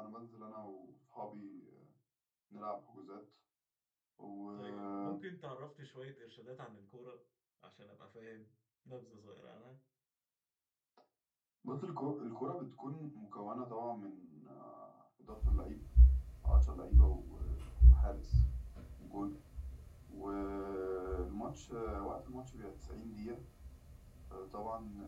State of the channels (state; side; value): identical; both; correlation 1.00